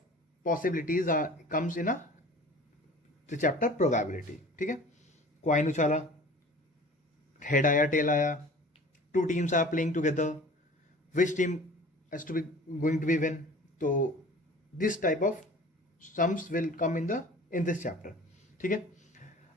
possibilities comes in a chapter probability. ठीक है, क्वाइन उछाला, हेड आया, टेल आया, two teams are playing together, which team has to be going to be win. तो this type of sums will come in this chapter. ठीक है,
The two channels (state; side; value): normal; both; correlation 0.44